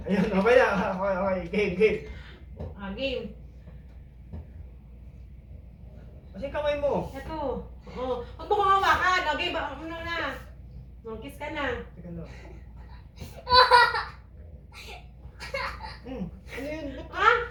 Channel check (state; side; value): identical; both; correlation 1.00